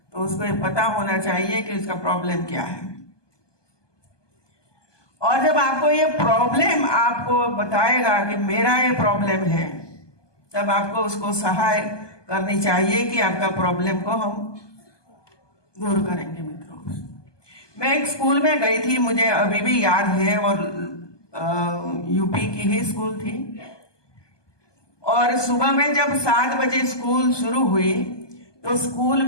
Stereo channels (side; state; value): right; late; 1.2 ms